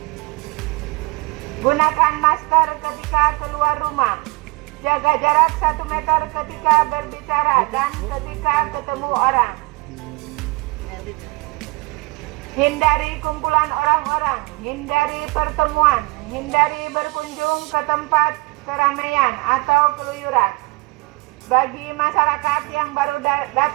Gunakan masker ketika keluar rumah. Jaga jarak 1 meter ketika berbicara dan ketika ketemu orang. Hindari kumpulan orang-orang, hindari pertemuan, hindari berkunjung ke tempat keramaian atau keluyuran. Bagi masyarakat yang baru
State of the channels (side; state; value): left; quieter; 25.1 dB